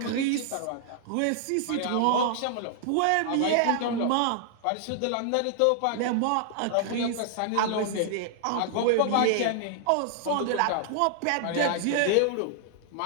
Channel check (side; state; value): both; different; correlation 0.00